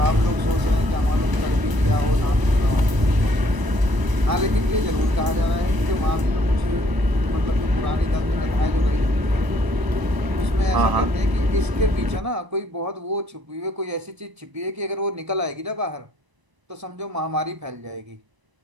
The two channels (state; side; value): late; left; 1.0 ms